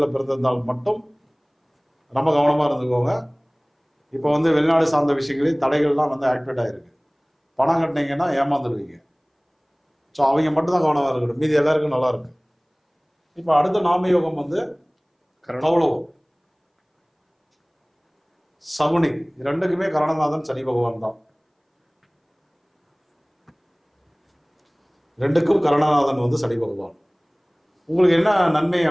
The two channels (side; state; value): both; identical; correlation 1.00